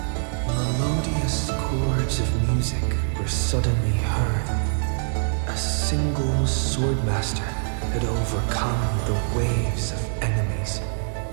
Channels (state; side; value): silent; left; digital silence